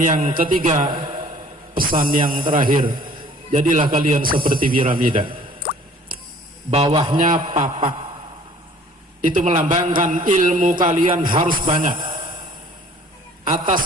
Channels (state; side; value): normal; both; correlation 0.53